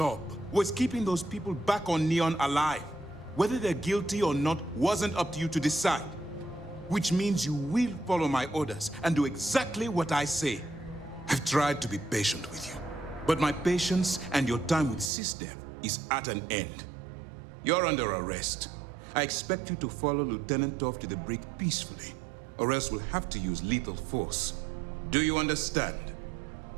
was keeping those people back on Neon alive. Whether they're guilty or not wasn't up to you to decide. Which means you will follow my orders and do exactly what I say. I've tried to be patient with you, but my patience and your time with SysDev is at an end. You're under arrest. I expect you to follow Lieutenant Toff to the brig peacefully, or else we'll have to use lethal force. Do you understand?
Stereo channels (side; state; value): left; drops out; at 15.1 s